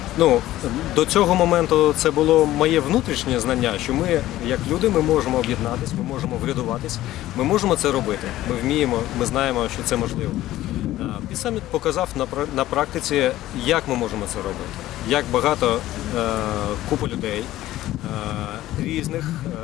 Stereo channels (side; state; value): right; quieter; 15.0 dB